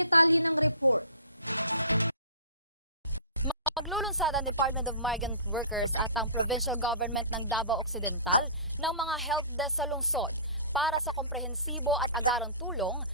ng report. Maglulunsad ang Department of Migrant Workers at ang Provincial Government ng Davao Occidental ng mga help desk sa lungsod para sa komprehensibo at agarang tulong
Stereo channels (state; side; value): inverted; both; correlation -0.42